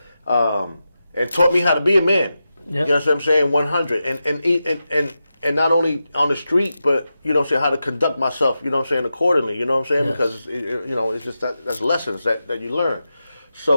and taught me how to be a man. Yep. You know what I'm saying? 100 and not only on the street, but you know what I'm saying, how to conduct myself. You know what I'm saying, accordingly. You know what I'm saying? Yes. Because you know, it's just that's lessons that you learn.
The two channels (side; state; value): both; inverted; correlation -0.90